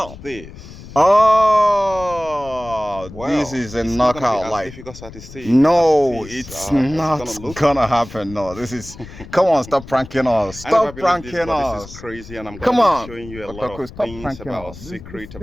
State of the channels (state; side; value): noise; left; rumble, 16 dB below the sound